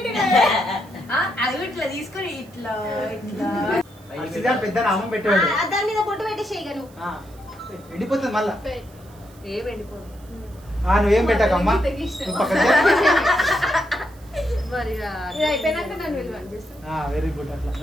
అది ఇట్లా తీసుకొని ఇట్లా ఇట్లా పెద్ద నామం పెట్టాడు దాని మీద బొట్టు పెట్టేసేయగను. ఎండిపోతుంది మళ్ళా ఏ వెళ్ళిపోదు నువ్వేం పెట్టకమ్మా నువ్వు పక్కన మరి ఇది అయిపోయినాక నన్ను విలువ చేస్తా. వెరీ గుడ్ అట్లా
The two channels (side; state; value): right; noise; hiss, 27 dB below the sound